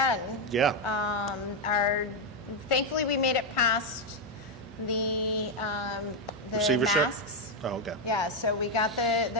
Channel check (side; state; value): both; normal; correlation 0.04